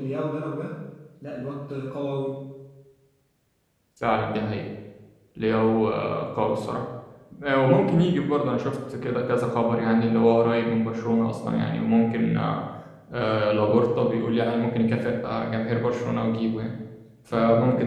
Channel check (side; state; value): both; identical; correlation 1.00